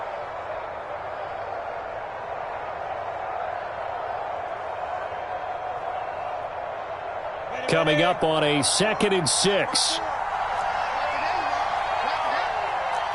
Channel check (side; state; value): both; identical; correlation 1.00